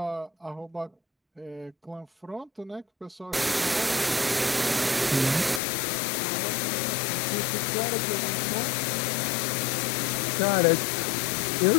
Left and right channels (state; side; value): drops out; right; at 5.6 s